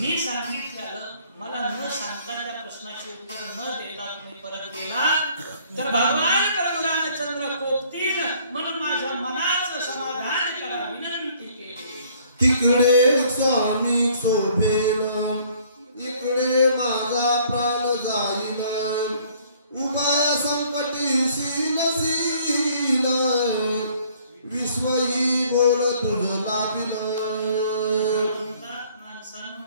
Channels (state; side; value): inverted; both; correlation -0.59